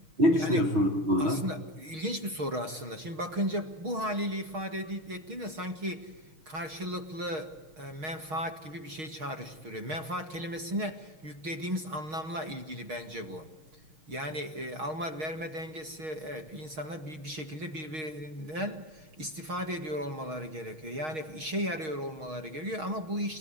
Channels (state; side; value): late; left; 6.4 ms